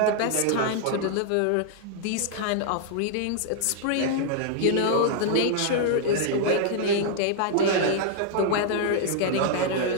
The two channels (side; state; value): both; different; correlation -0.01